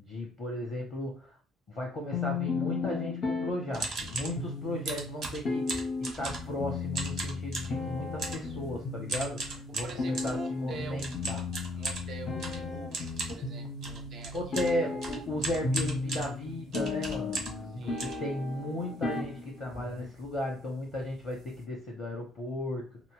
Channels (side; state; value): both; normal; correlation 0.64